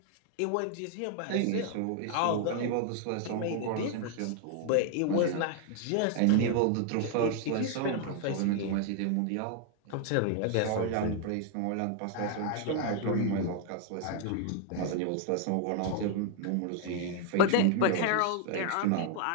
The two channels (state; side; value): different; both; correlation 0.00